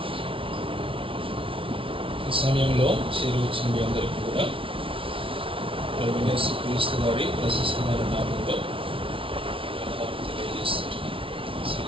ఈ సమయంలో చేరువచ్చిన మీ అందరికీ కూడా ప్రభు యేసు క్రీస్తు వారి ప్రశస్తమైన నామంలో తెలియజేస్తున్నాను.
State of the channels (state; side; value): late; left; 0.25 ms